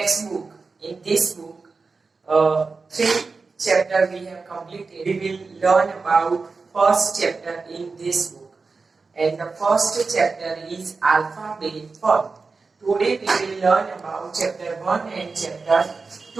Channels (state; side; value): quieter; left; 4.3 dB